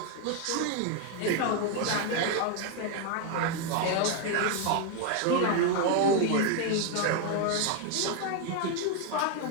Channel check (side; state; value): both; different; correlation 0.01